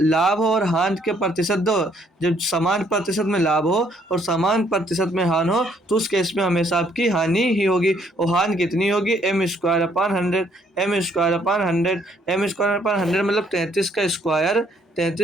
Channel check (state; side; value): normal; both; correlation 0.67